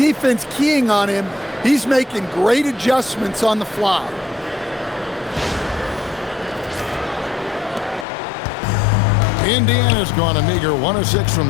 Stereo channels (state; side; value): drops out; right; at 8.1 s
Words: keying on him, he's making great adjustments on the fly. Indiana's gone a meager 1 of 6